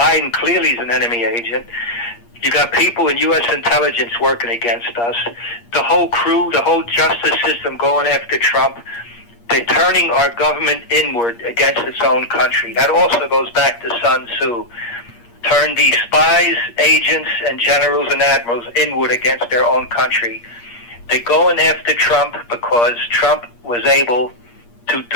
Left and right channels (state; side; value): late; right; 8.5 ms